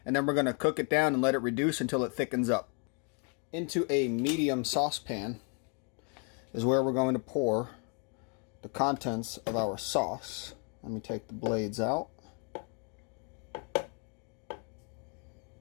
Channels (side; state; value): right; quieter; 38.6 dB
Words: And then we're going to cook it down and let it reduce until it thickens up. Into a medium saucepan is where we're going to pour the contents of our sauce. Let me take the blades out.